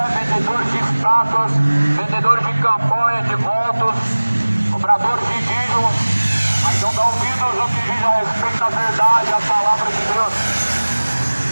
vendedores de estátuas, vendedores de campanha, de votos, cobradores de dízimos, mas não dão ouvidos no que diz a respeito da verdade, a palavra de Deus.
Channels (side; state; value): both; inverted; correlation -1.00